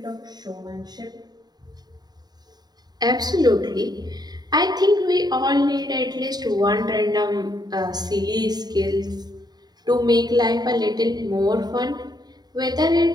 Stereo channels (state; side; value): late; left; 0.20 ms